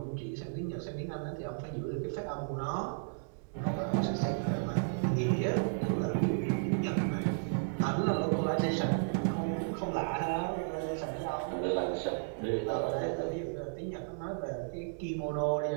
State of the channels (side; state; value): left; silent; digital silence